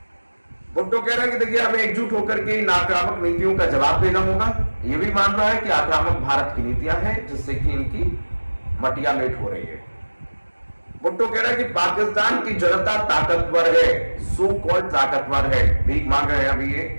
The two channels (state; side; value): inverted; both; correlation -1.00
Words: भुट्टो कह रहा है कि देखिए, हमें एकजुट होकर के इन आक्रामक नीतियों का जवाब देना होगा। यह भी मान रहा है कि आक्रामक भारत की नीतियां हैं जिससे कि इनकी मटिया मेट हो रही है। भुट्टो कह रहा है कि पाकिस्तान की जनता ताकतवर है, सो कॉल्ड ताकतवर है, भीख मांग रहे हैं अभी ये,